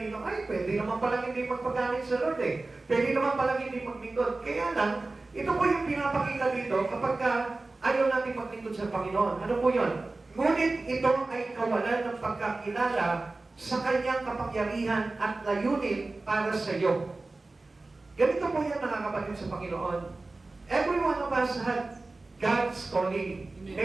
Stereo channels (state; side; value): quieter; left; 3.3 dB